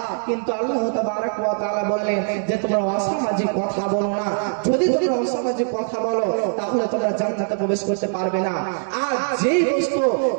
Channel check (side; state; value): left; silent; digital silence